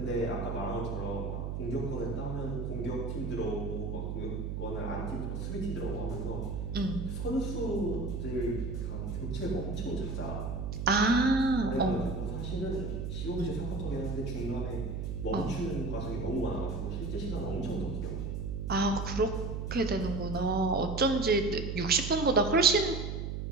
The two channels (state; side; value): noise; right; hum, 3 dB below the sound